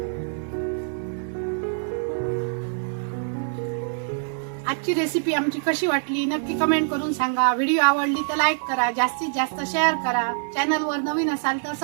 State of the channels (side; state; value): left; silent; 62 dB below the other